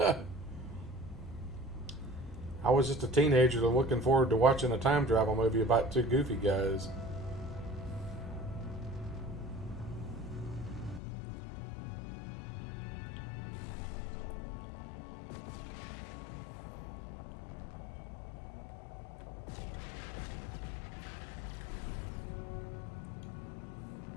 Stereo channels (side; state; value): right; drops out; at 11.0 s